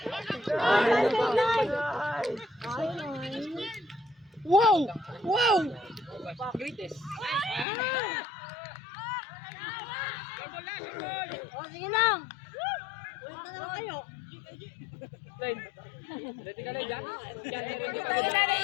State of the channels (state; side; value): drops out; right; at 7.7 s